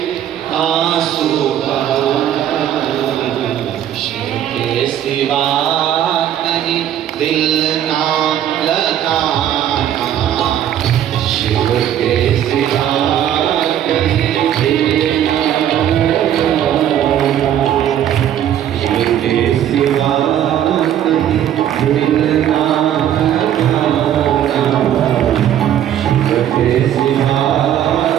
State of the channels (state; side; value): quieter; left; 10.7 dB